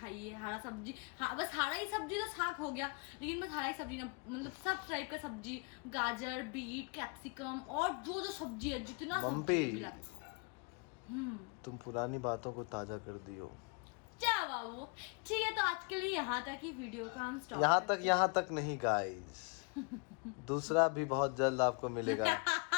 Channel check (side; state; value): right; quieter; 33.1 dB